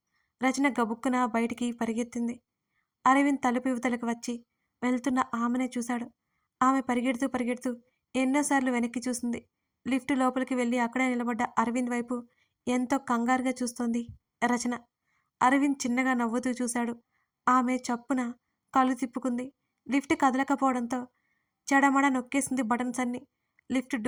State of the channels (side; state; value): both; identical; correlation 1.00